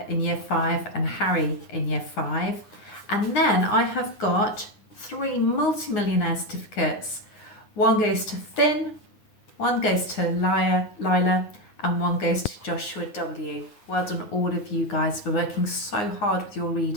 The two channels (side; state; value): right; late; 9.7 ms